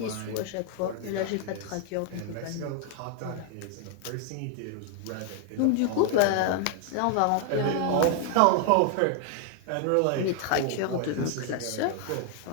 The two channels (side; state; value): both; different; correlation 0.00